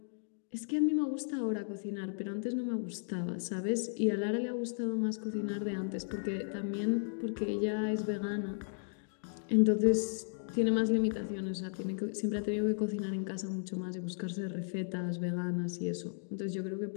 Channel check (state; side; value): silent; right; digital silence